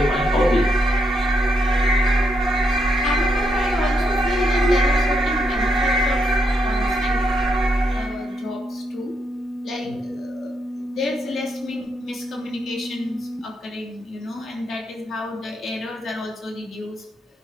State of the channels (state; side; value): normal; both; correlation 0.78